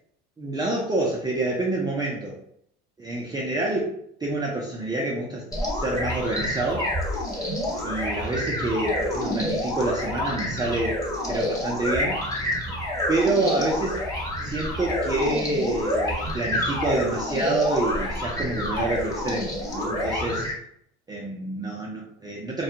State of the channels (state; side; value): normal; both; correlation 0.40